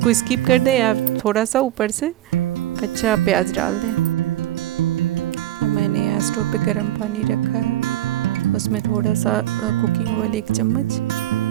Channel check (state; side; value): quieter; left; 14.0 dB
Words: स्किप कर दें या थोड़ा सा ऊपर से कच्चा प्याज डाल दें। अब मैंने यहाँ स्टोव पे गर्म पानी रखा है, उसमें थोड़ा सा कुकिंग ऑयल 1 चम्मच